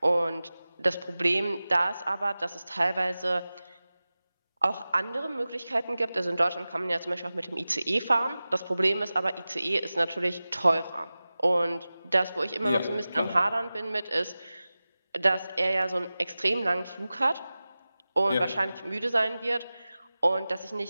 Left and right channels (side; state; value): both; inverted; correlation -0.96